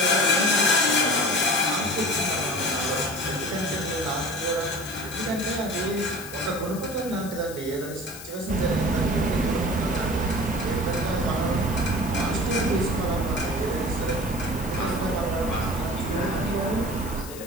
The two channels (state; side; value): noise; left; hiss, 14 dB below the sound